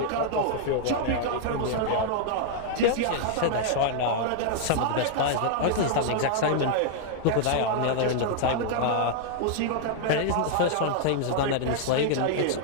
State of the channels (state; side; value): different; both; correlation -0.01